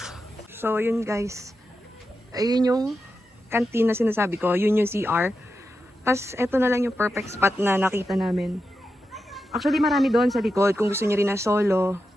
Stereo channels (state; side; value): normal; both; correlation 0.89